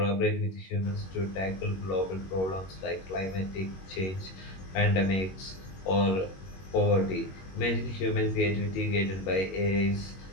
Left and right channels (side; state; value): right; late; 21 ms